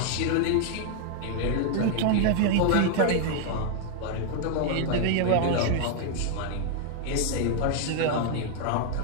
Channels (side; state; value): both; different; correlation 0.00